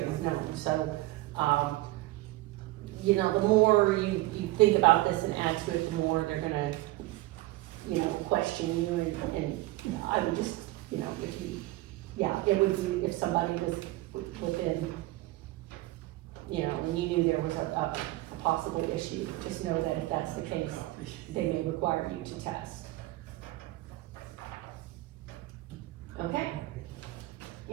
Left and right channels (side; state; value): left; quieter; 18.5 dB